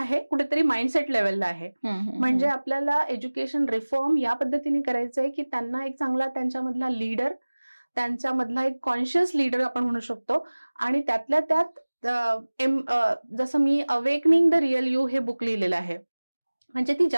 कुठेतरी माइंडसेट लेवलला आहे. म्हणजे आपल्याला एज्युकेशन रिफॉर्म या पद्धतीने करायचं आहे की त्यांना एक चांगला त्यांच्यामधला लीडर, त्यांच्यामधला एक कॉन्शियस लीडर आपण म्हणू शकतो. आणि त्यातल्या त्यात जसं मी अवेकनिंग द रिअल यू हे बुक लिहिलेलं आहे. म्हणजे ती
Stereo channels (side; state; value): both; inverted; correlation -1.00